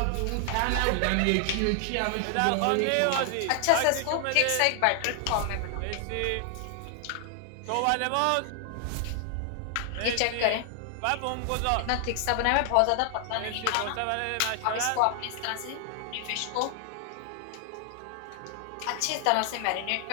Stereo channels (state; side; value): different; both; correlation 0.00